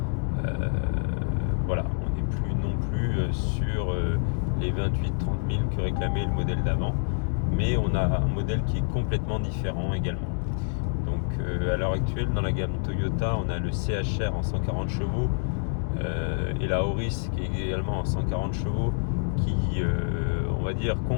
Voilà, on n'est plus non plus sur les 28-30 000 que réclamait le modèle d'avant, mais on a un modèle qui est complètement différent également. Donc à l'heure actuelle, dans la gamme Toyota, on a le CHR en 140 chevaux et la Auris qui est également en 140 chevaux, qui, on va dire,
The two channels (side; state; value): right; silent; digital silence